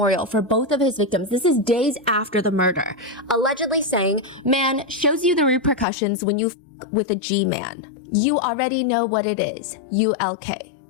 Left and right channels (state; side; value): drops out; right; at 5.9 s